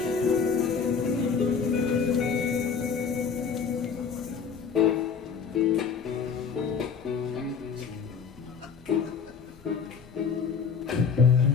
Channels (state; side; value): quieter; right; 6.1 dB